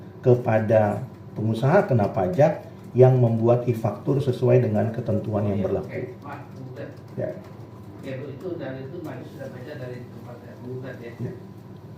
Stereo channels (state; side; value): identical; both; correlation 1.00